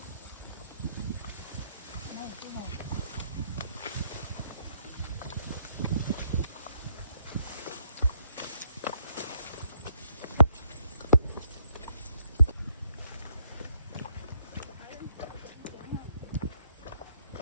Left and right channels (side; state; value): both; inverted; correlation -0.73